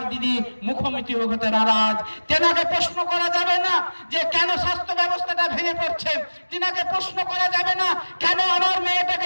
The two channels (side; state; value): both; inverted; correlation -1.00